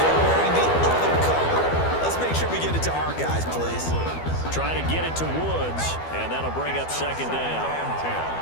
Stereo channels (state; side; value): late; right; 12 ms